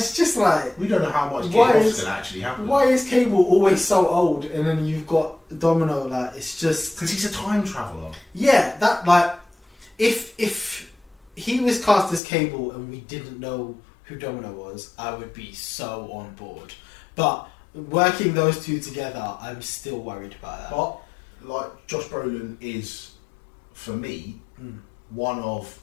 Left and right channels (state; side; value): drops out; right; at 12.2 s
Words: just like, We don't know how much Why Game is- can actually happen. why is Cable always so old? And then you've got Domino, like, it's just... Because he's a time traveller. Yeah, that, like, if he was cast as Cable and we didn't know who Domino was, I would be so on board. But working those two together, I'm still worried about that. But, like, Josh Brolin is, for me, one of